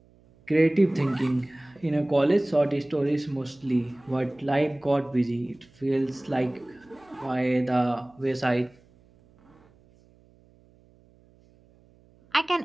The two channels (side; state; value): right; noise; hum, 30 dB below the sound